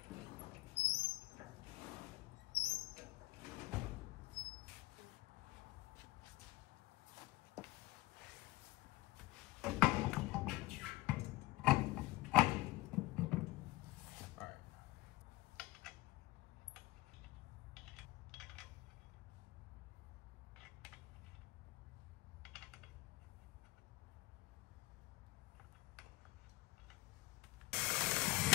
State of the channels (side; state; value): right; quieter; 20.1 dB